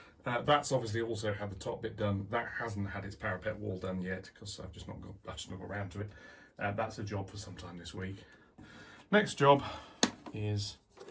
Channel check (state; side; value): identical; both; correlation 1.00